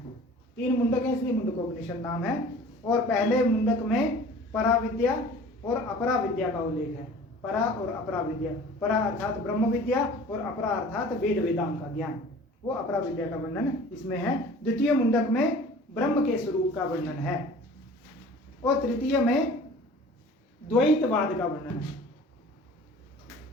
3 मुंडक हैं, इसलिए मुंडकोपनिषद नाम है। और पहले मुंडक में पराविद्या और अपरा विद्या का उल्लेख है। परा और अपरा विद्या, परा अर्थात ब्रह्म विद्या और अपरा अर्थात वेद वेदांग का ज्ञान, वो अपरा विद्या का वर्णन इसमें है। द्वितीय मुंडक में ब्रह्म के स्वरूप का वर्णन है और तृतीय में द्वैतवाद का वर्णन है।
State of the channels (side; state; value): both; normal; correlation 0.45